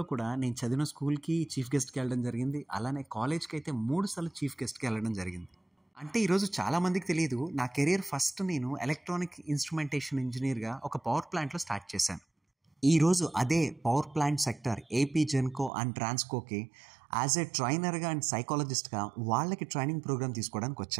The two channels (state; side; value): drops out; left; at 15.7 s